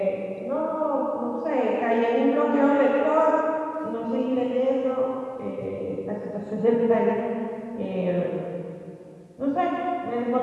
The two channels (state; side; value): identical; both; correlation 1.00